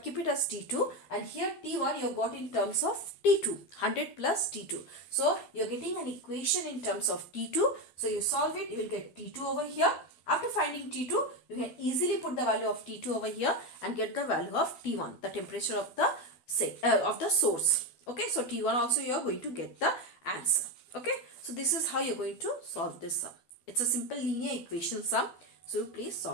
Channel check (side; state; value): right; late; 12 ms